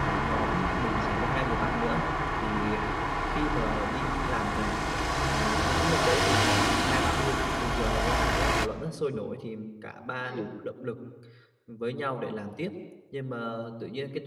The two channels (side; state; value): both; identical; correlation 1.00